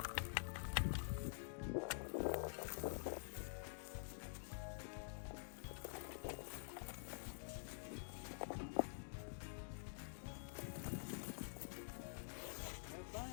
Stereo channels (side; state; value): right; silent; digital silence